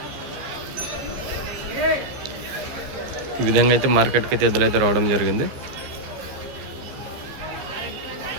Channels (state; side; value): late; left; 15 ms